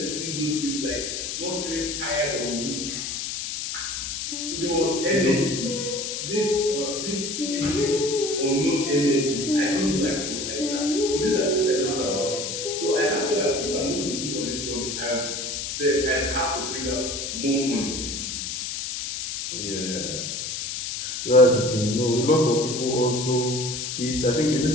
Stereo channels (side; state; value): left; noise; hiss, 4 dB below the sound